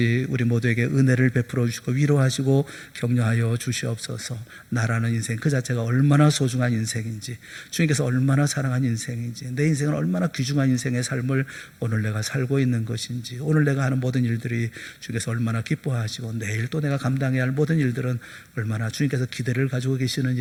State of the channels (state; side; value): identical; both; correlation 1.00